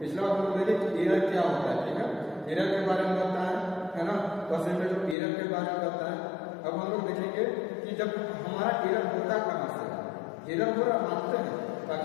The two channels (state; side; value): drops out; right; at 5.2 s